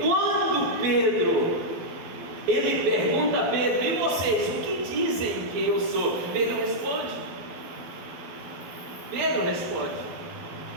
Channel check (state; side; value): late; left; 12 ms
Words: quando Pedro, ele pergunta a Pedro: e vocês, o que dizem que eu sou? Pedro responde.